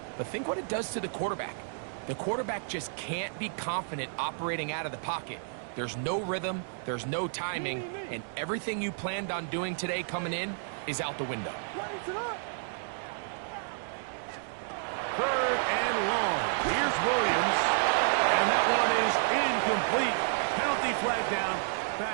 but think what it does to the quarterback. The quarterback just can't be confident operating out of the pocket. There's no rhythm, there's no timing, and everything you planned on doing today coming in is out the window. What is it? 3rd and long. Here's Williams, and that one is incomplete. Penalty flag down,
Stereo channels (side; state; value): left; silent; digital silence